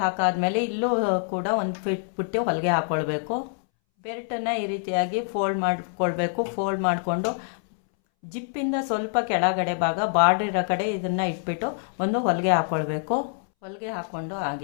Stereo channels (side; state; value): right; silent; 61 dB below the other